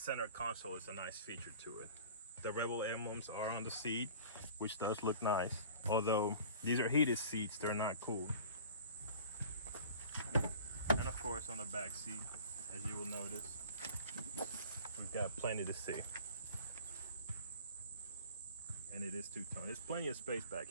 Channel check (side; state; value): both; inverted; correlation -0.44